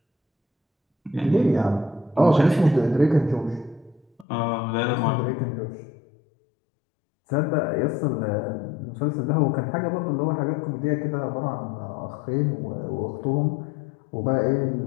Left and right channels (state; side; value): drops out; right; at 4.2 s